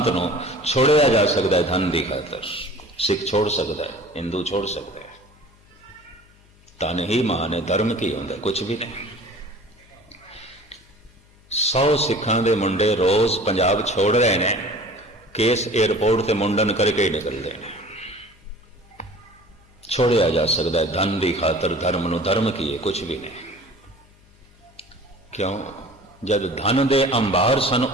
छोड़िया जा सकता है धन की खातर। सिख छोड़ सकता है, हिंदू छोड़ सकता है। धन ही मान है, धर्म की होंगे कुछ भी नहीं। 100 सिखां दे मुंडे रोज पंजाब छोड़ रहे हैं, केस एयरपोर्ट से मुंडन करके ही निकलते हैं। छोड़िया जा सकता है धन की खातर धर्म नूं। धर्म की है कुछ भी नहीं। क्यों? जब धन दे अंबार सन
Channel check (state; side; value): noise; left; hum, 29 dB below the sound